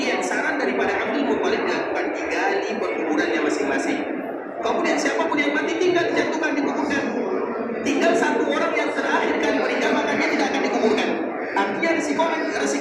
saran daripada Abdul Muttalib dilakukan, digali perkuburannya masing-masing. Kemudian siapapun yang mati tinggal dijatuhkan, dikuburkan. Tinggal satu orang yang terakhir kali meninggal, maka dia tidak akan dikuburkan. Artinya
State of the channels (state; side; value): identical; both; correlation 1.00